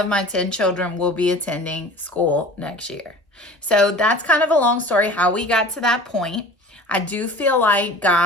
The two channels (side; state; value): both; normal; correlation 0.41